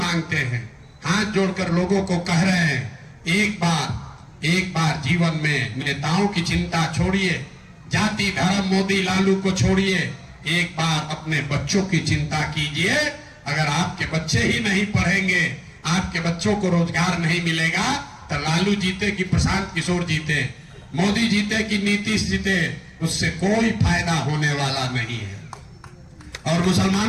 हैं, हाथ जोड़कर लोगों को कह रहे हैं, एक बार जीवन में नेताओं की चिंता छोड़िए, जाति धर्म मोदी लालू को छोड़िए, एक बार अपने बच्चों की चिंता कीजिए। अगर आपके बच्चे ही नहीं पढ़ेंगे, आपके बच्चों को रोजगार नहीं मिलेगा, तो लालू जीते कि प्रशांत किशोर जीते, मोदी जीते कि नीतीश जीते, उससे कोई फायदा होने वाला नहीं है। और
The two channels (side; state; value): both; identical; correlation 1.00